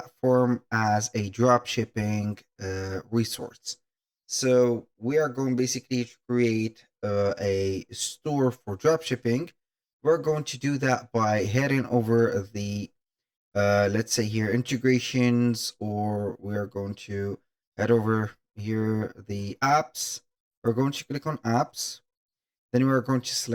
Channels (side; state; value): both; identical; correlation 1.00